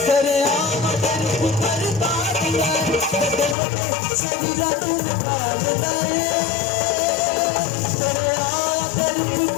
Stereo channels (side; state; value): right; drops out; at 3.6 s